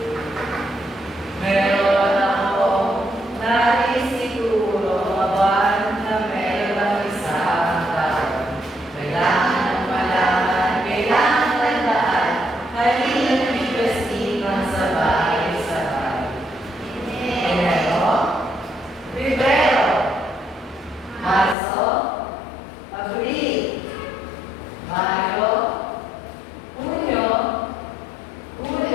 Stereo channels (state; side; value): drops out; right; at 21.6 s